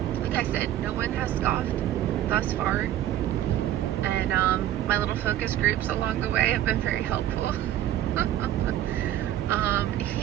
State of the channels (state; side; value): quieter; left; 12.5 dB